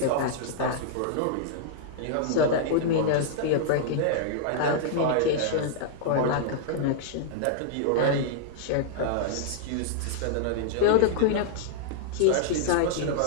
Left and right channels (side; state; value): both; different; correlation -0.02